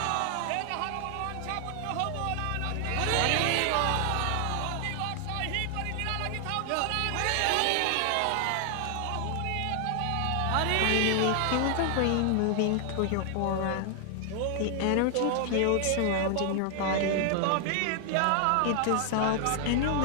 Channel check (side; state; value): both; different; correlation 0.00